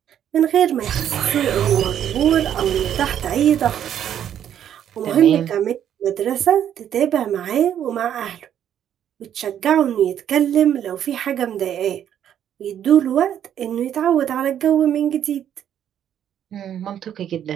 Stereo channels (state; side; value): quieter; left; 9.9 dB